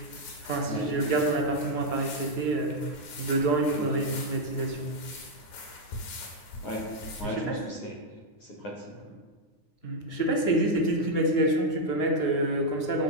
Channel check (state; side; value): late; right; 9.6 ms